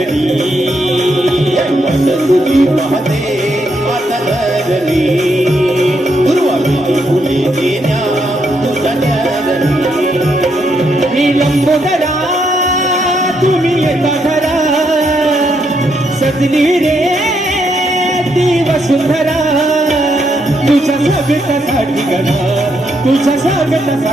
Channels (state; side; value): normal; both; correlation 0.77